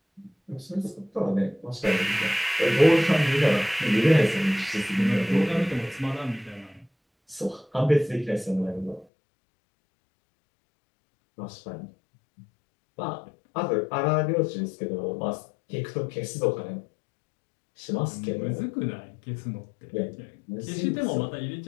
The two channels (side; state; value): right; drops out; at 9.1 s